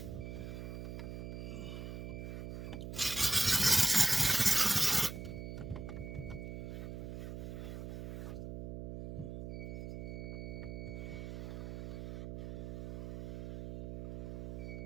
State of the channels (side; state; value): right; noise; hum, 7 dB below the sound